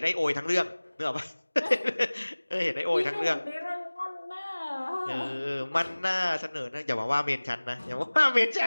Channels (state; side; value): inverted; both; correlation -1.00